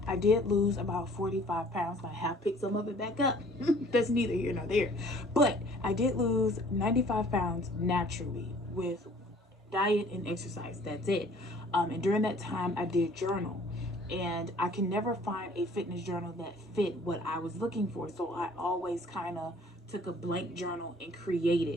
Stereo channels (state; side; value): normal; both; correlation 0.54